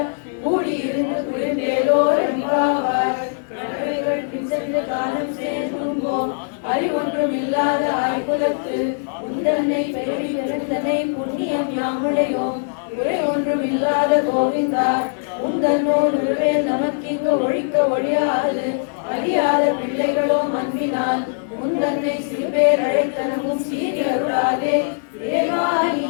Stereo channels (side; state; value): right; silent; digital silence